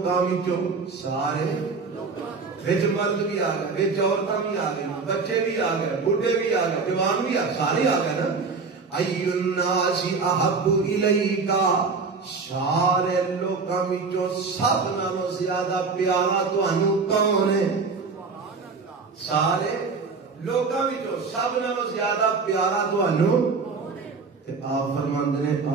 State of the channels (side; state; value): left; quieter; 4.6 dB